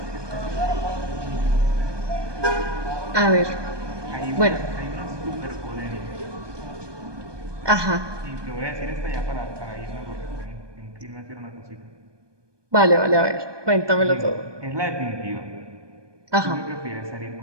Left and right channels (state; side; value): late; left; 1.2 ms